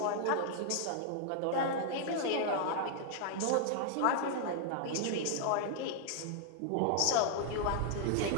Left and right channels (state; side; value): different; both; correlation 0.00